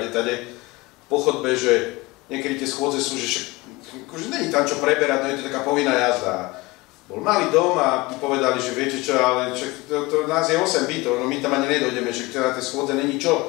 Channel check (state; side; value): quieter; right; 22.3 dB